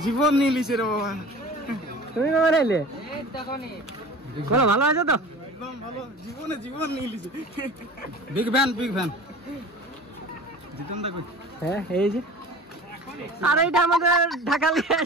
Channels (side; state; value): both; normal; correlation 0.39